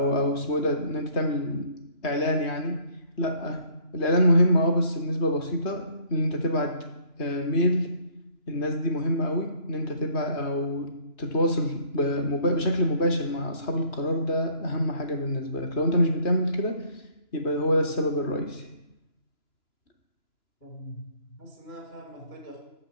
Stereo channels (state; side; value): late; right; 2.9 ms